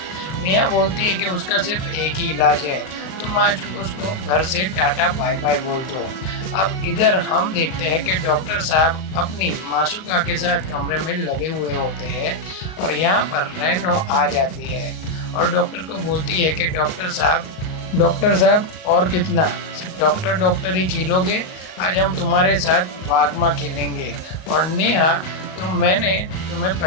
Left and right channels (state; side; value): late; right; 38 ms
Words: नेहा बोलती है कि उसका सिर्फ एक ही इलाज है, तुम आज उसको घर से टाटा बाय बाय बोल दो। अब इधर हम देखते हैं कि डॉक्टर साहब अपनी मासूका के साथ कमरे में लगे हुए होते हैं और यहाँ पर रेनो आ जाती है और डॉक्टर को बोलती है कि डॉक्टर साहब और कितना, डॉक्टर ही खेलोगे, आज हम तुम्हारे साथ वागमा खेलेंगे। और नेहा मैंने तुम्हें